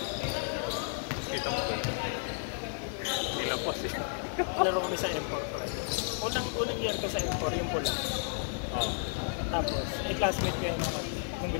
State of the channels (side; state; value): right; silent; 56 dB below the other